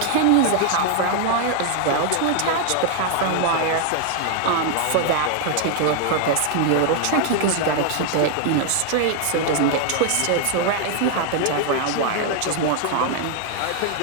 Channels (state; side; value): different; both; correlation 0.00